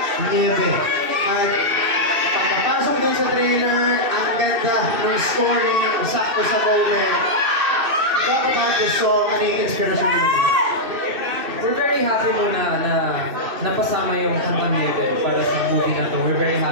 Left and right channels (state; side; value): late; left; 2.6 ms